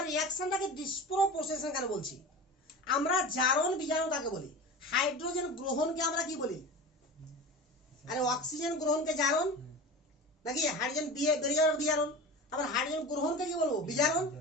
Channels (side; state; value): both; normal; correlation 0.32